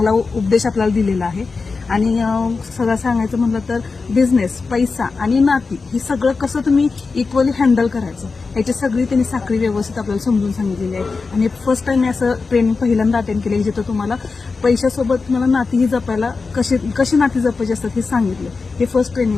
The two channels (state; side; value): quieter; right; 4.4 dB